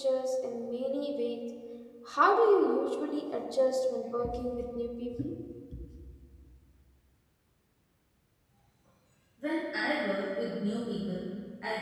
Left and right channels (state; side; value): identical; both; correlation 1.00